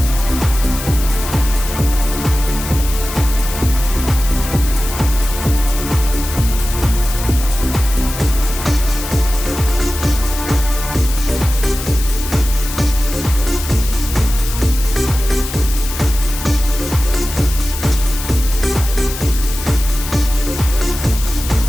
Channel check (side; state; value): left; noise; hiss, 9 dB below the sound